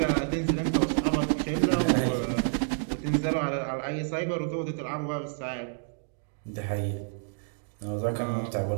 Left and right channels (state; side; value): silent; left; digital silence